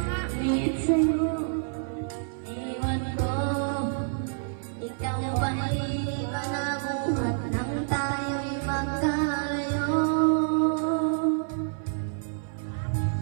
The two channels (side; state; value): left; silent; 56 dB below the other